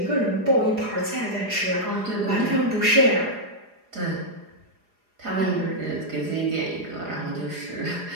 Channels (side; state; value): left; late; 4.8 ms